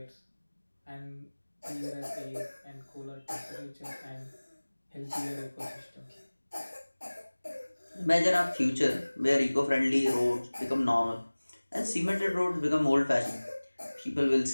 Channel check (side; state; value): both; inverted; correlation -1.00